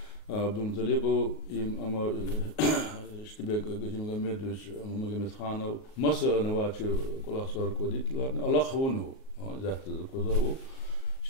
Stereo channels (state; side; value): late; right; 38 ms